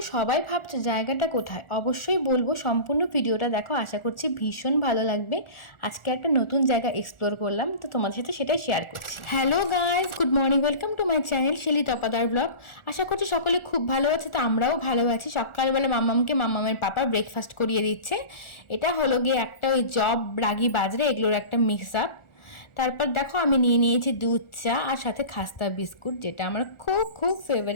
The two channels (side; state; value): right; late; 1.4 ms